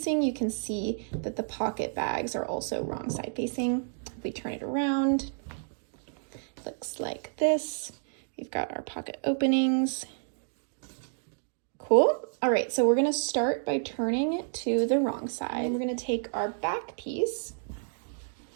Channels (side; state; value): left; silent; digital silence